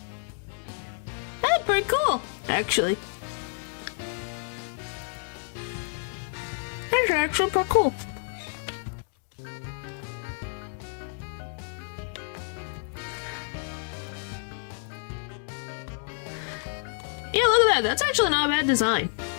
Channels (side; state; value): right; silent; digital silence